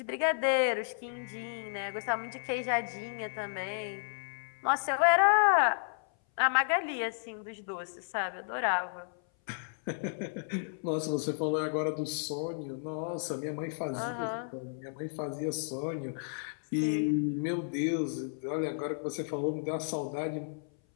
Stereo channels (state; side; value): silent; right; 56 dB below the other